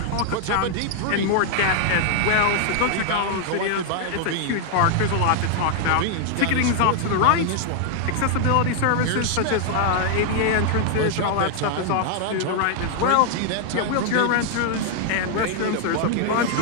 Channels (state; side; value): different; both; correlation 0.00